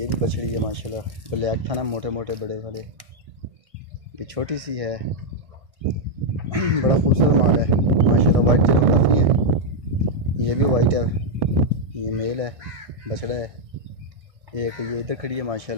भी बछड़ी है माशाल्लाह, ब्लैक था ना मोटे मोटे बड़े वाले, ये छोटी सी है। बड़ा खूबसूरत माल है माशाल्लाह, वाइट जानवर काफ़ी है। ये भी वाइट है, ये मेल है, बछड़ा है। एक ये इधर खड़ी है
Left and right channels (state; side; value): late; left; 1.6 ms